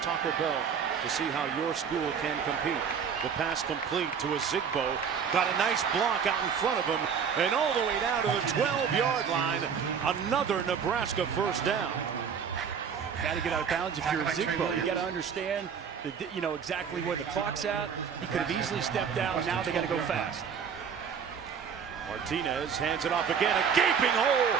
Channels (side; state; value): left; quieter; 7.0 dB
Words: Bell to see how your school can compete. The pass complete to a Zigbo. Got a nice block out in front of him, and all the way down to the 12-yard line. Another Nebraska first down. Got to get out of bounds if you're a Zigbo. You got to understand exactly where the clock's at. He could have easily stepped out. Now they got to go fast. Martinez hands it off again. A gaping hole.